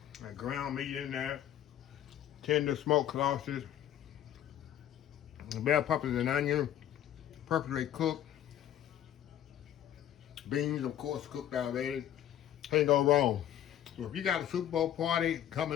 That ground meat in there. Tender smoked sausage. Bell peppers and onion. Perfectly cooked. Beans, of course, cooked already. Can't go wrong. So if you got a Super Bowl party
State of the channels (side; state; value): right; quieter; 11.2 dB